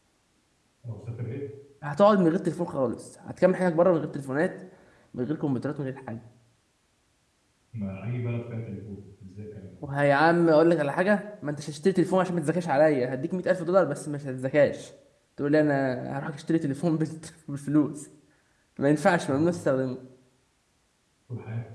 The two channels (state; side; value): identical; both; correlation 1.00